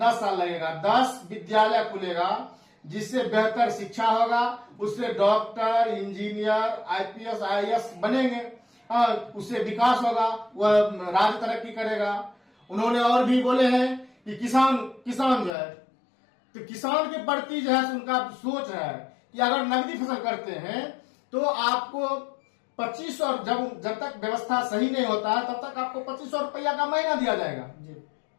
साल लगेगा। 10 विद्यालय खुलेगा जिससे बेहतर शिक्षा होगा, उससे डॉक्टर, इंजीनियर, IPS, IAS बनेंगे, उससे विकास होगा, वह राज्य तरक्की करेगा। उन्होंने और भी बोले हैं कि किसान जो है तो किसान के प्रति जो है उनका सोच है कि अगर नकदी फसल करते हैं तो आपको 2500, जब तक व्यवस्था सही नहीं होता है तब तक आपको 2500 रुपया का महीना दिया जाएगा जी।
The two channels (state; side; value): drops out; right; at 15.6 s